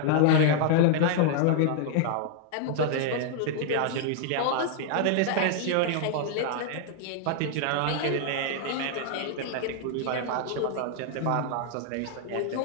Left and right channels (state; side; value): different; both; correlation 0.00